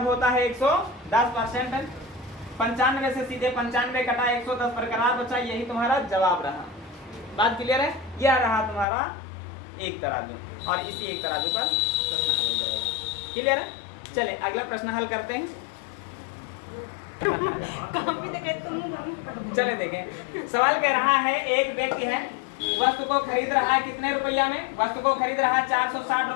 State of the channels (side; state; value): right; drops out; at 8.8 s